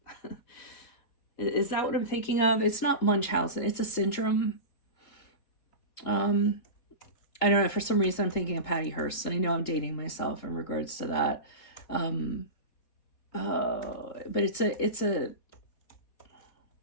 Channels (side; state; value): right; late; 3.8 ms